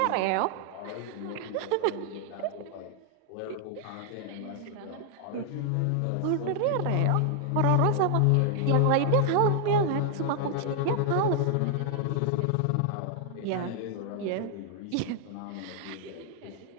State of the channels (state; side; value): different; both; correlation 0.00